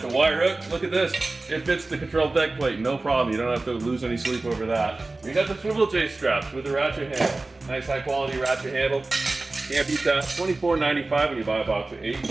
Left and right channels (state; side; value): quieter; left; 3.2 dB